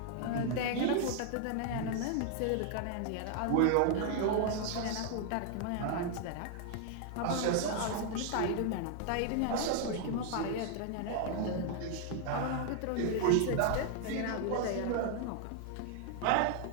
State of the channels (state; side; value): different; both; correlation 0.00